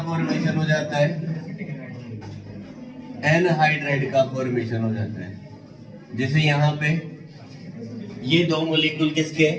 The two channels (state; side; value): identical; both; correlation 1.00